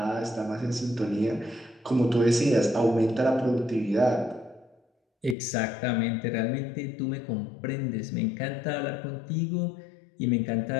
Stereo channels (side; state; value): right; drops out; at 5.4 s